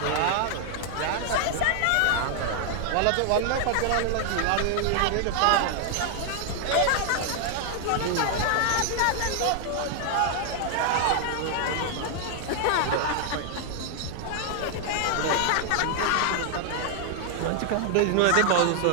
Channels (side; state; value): both; different; correlation 0.00